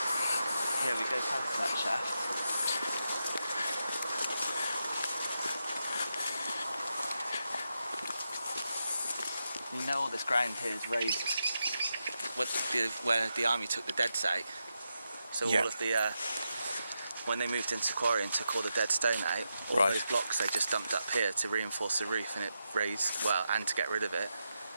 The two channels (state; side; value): inverted; both; correlation -0.86